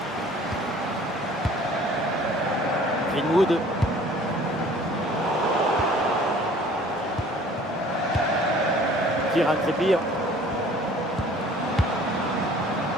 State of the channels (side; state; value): both; normal; correlation 0.51